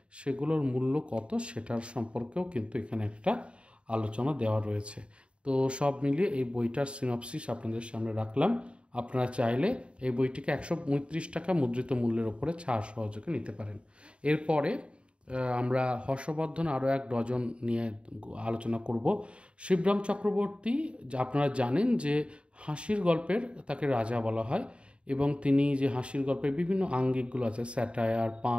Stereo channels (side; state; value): left; late; 0.057 ms